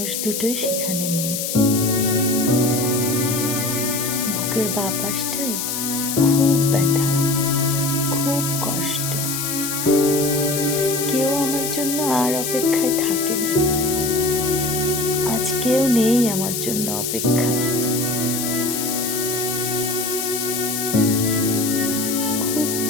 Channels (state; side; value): noise; left; hiss, 3 dB below the sound